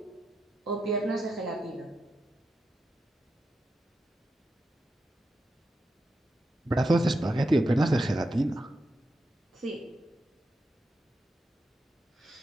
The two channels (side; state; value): both; normal; correlation 0.87